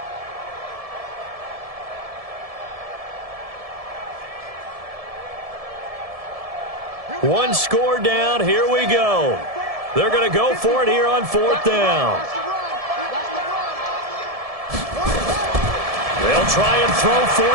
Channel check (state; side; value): late; left; 1.7 ms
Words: One score down. Here we go. They're going to go for it here on 4th down. They'll try and throw for